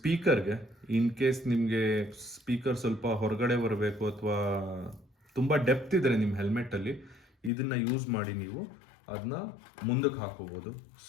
ಇನ್ ಕೇಸ್ ನಿಮಗೆ ಸ್ಪೀಕರ್ ಸ್ವಲ್ಪ ಹೊರಗಡೆ ಬರಬೇಕು ಅಥವಾ ತುಂಬ ಡೆಪ್ತ್ ಇದ್ದರೆ ನಿಮ್ಮ ಹೆಲ್ಮೆಟ್ಟಲ್ಲಿ, ಇದನ್ನು ಯೂಸ್ ಮಾಡಿ ನೀವು ಅದನ್ನ ಮುಂದಕ್ಕೆ ಹಾಕೋಬೋದು.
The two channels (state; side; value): drops out; right; at 7.5 s